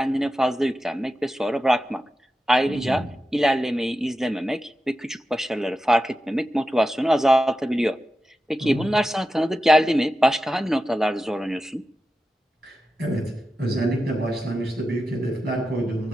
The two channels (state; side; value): normal; both; correlation 0.91